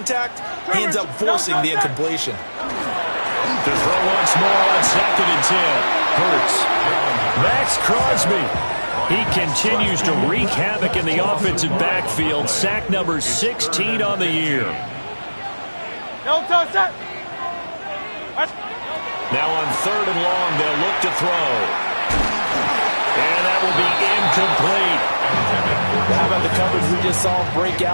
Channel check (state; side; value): inverted; both; correlation -1.00